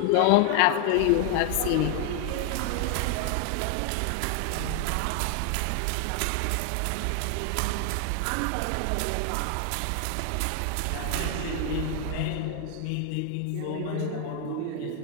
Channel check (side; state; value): both; different; correlation 0.00